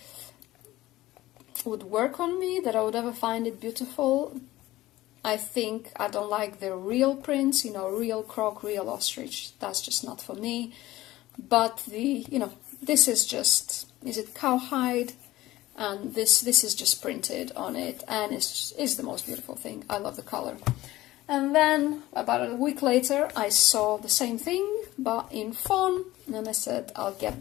work on me, that I would ever find it beautiful. I think I don't like the real prints, real croc, real ostrich. That's just not for me. But this is just, is it cowhide? And this is just printed on it, and it's the most beautiful thing. I love the color. And then about a week later, I saw the same thing, but in fawn, and I said, I'll get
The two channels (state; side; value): quieter; right; 16.8 dB